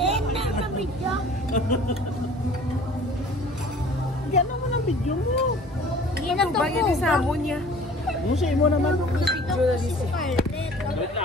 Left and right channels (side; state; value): both; normal; correlation 0.48